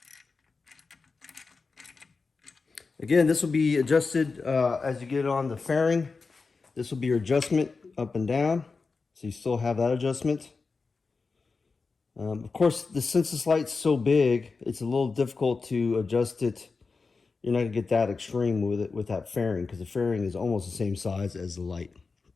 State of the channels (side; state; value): right; quieter; 4.4 dB